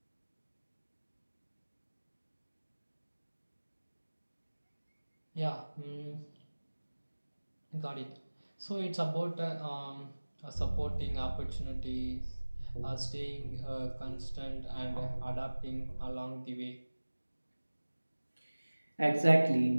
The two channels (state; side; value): inverted; both; correlation -1.00